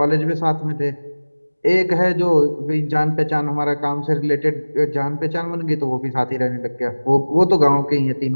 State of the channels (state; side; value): inverted; both; correlation -1.00